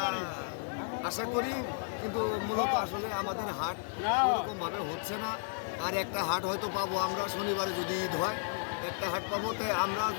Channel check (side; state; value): right; silent; 56 dB below the other